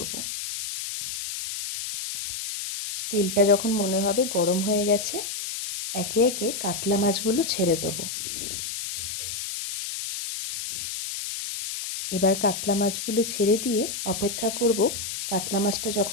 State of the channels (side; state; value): left; noise; hiss, 5 dB below the sound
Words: তেলটা যখন মনে হবে গরম হয়ে গেছে, একে একে কাতলা মাছগুলো ছেড়ে দেবো। এবার কাতলা মাছগুলো ছেড়ে দিয়ে অপেক্ষা করব কাতলা মাছটা